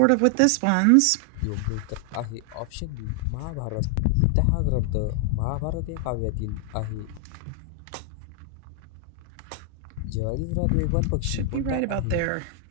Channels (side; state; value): both; different; correlation 0.00